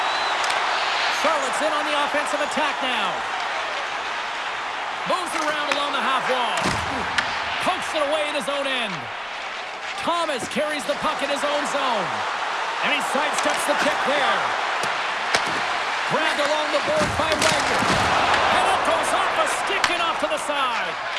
Charlotte's in on the offensive attack now. Moves it around along the half wall. Pokes it away in his own end. Thomas carries the puck in his own zone. And he sidesteps the kick there. Grabbed along the board by Wagner. And it goes off a stick and off to the side.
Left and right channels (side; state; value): both; identical; correlation 1.00